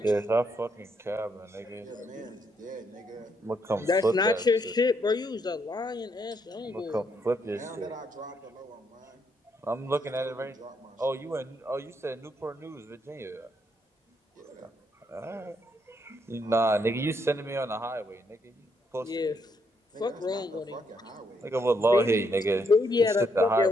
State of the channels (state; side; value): normal; both; correlation 0.75